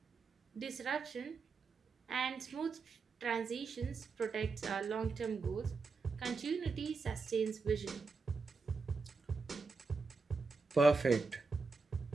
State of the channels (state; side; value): quieter; left; 4.4 dB